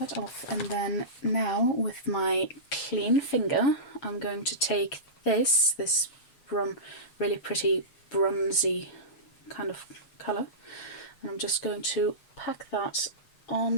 off, and then now with my clean finger I'm going to take this really pretty bronzy kind of colour, and I'm just going to pack that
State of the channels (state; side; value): late; right; 7.3 ms